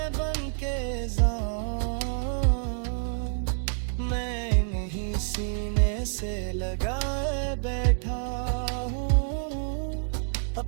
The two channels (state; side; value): silent; left; 59 dB below the other